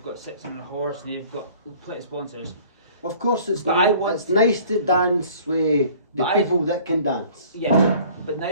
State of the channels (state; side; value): inverted; both; correlation -0.51